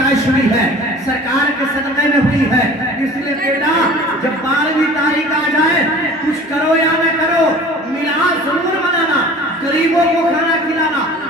हुई है सरकार के सदक़े में हुई है। इसलिए बेटा जब 12वीं तारीख आ जाए, कुछ करो या न करो, मिलाद जरूर मनाना, गरीबों को खाना खिलाना,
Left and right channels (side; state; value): both; normal; correlation 0.44